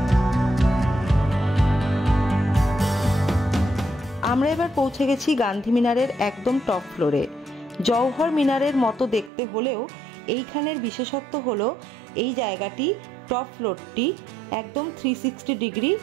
আমরা এবার পৌঁছে গেছি গান্ধী মিনারের একদম টপ ফ্লোরে। জওহর মিনারের মতো দেখতে হলেও এইখানের বিশেষত্ব হলো এই জায়গাটি টপ ফ্লোরটি একদম 360 ডিগ্রি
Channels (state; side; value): drops out; left; at 9.3 s